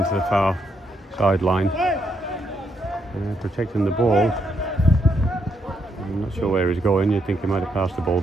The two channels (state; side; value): normal; both; correlation 0.77